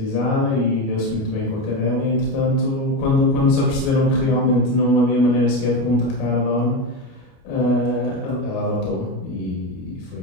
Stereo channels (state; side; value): late; right; 29 ms